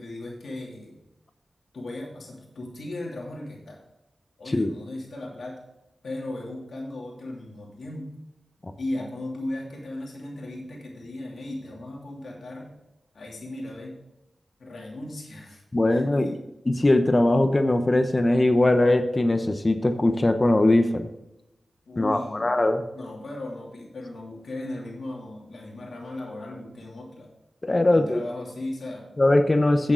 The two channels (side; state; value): both; normal; correlation 0.98